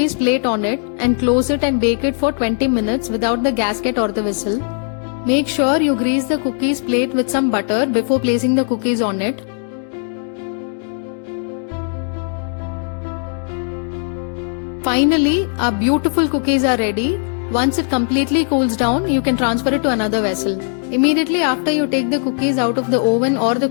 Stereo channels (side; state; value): right; silent; 58 dB below the other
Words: plate on it and close it and bake it for 20 minutes without the gasket or the whistle. Make sure you grease the cookies plate with some butter before placing the cookies on it. Finally, our beautiful cookies are ready. Once it completely cools down, you can transfer it to another vessel. Immediately after you take the cookies out of the oven or the